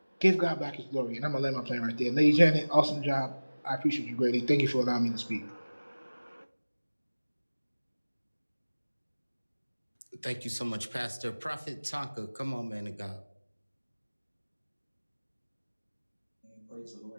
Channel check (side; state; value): both; inverted; correlation -1.00